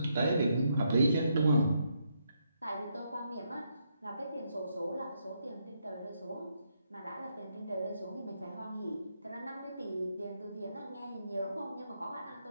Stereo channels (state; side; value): inverted; both; correlation -0.78